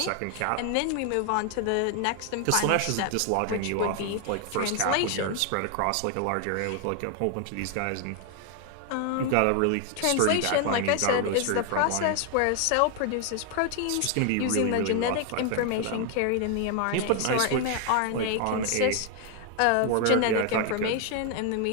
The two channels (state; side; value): different; both; correlation 0.00